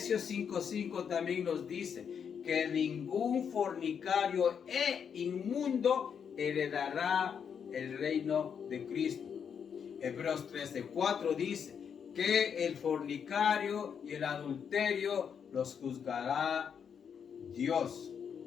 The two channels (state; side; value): quieter; right; 7.3 dB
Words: 5:5 también nos dice que ningún fornicario e inmundo heredará el reino de Cristo. Hebreos 13:4 dice que el fornicario y el adulterio los juzgará Dios.